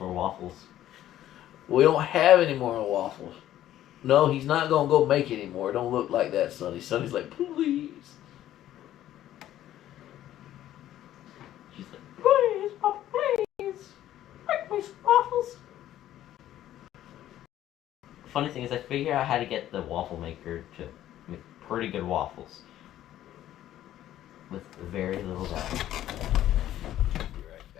more waffles. We don't have any more waffles. No, he's not gonna go make it anymore. It don't look like that, Sonny. Sonny's like, please. She's like, please, Papa, please, make me some waffles. Funny thing is, I figured out how to get the waffle maker to make pretty good waffles with very little doubt. Be right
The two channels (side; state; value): right; quieter; 12.7 dB